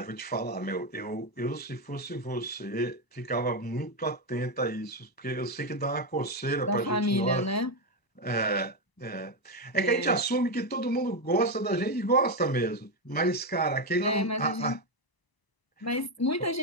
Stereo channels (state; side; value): late; right; 1.0 ms